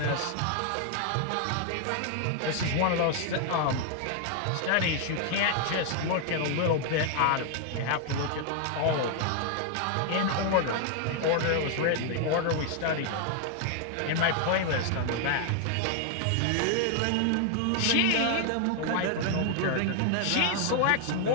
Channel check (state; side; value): different; both; correlation 0.00